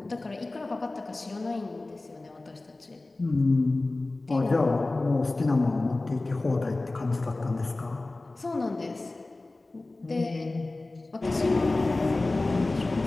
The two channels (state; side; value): quieter; right; 3.1 dB